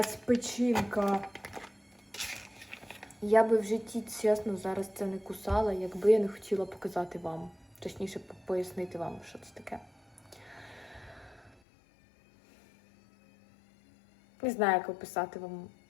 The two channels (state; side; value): drops out; right; at 11.6 s